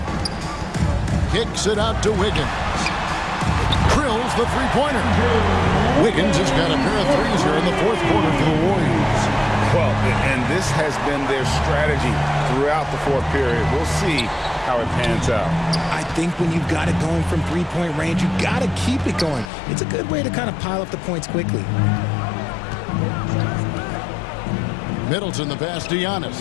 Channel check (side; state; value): right; drops out; at 19.5 s